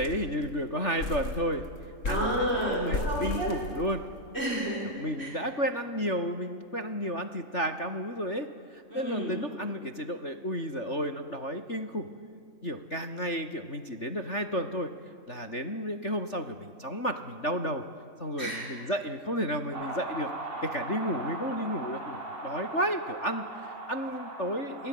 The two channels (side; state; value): right; late; 3.4 ms